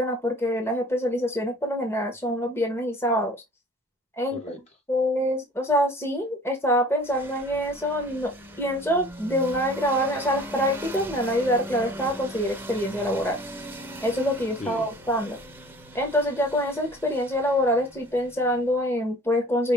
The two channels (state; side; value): normal; both; correlation 0.47